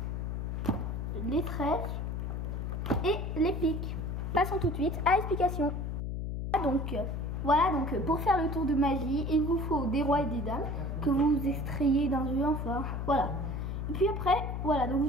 les trèfles et les piques. Passons tout de suite à l'explication. Donc voilà, donc pour faire le tour de magie, il vous faut des rois et des dames que vous extrayez d'un jeu, enfin voilà. Et puis après, voilà,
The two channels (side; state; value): left; noise; hum, 3 dB below the sound